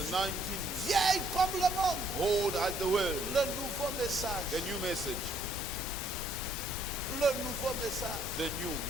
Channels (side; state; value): both; normal; correlation 0.66